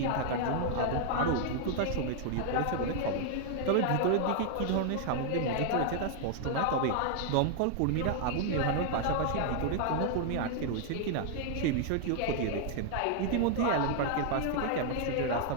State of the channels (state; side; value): different; both; correlation 0.00